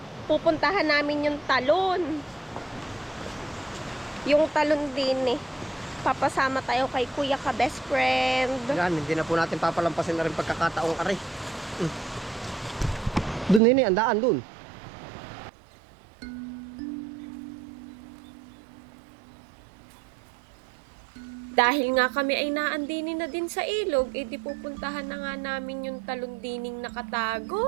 Pupuntahan namin yung talon. Yung talon din eh. Papasama tayo kay Kuya ka best friend. Yan, hindi na po natin papalampasin na rin pagkakataong ari. Doon nini, andaan doon. Dahil nga kami ay naandinin na din sa ilog, edi pupuntahan na nga namin yung talundining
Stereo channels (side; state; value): left; drops out; at 13.6 s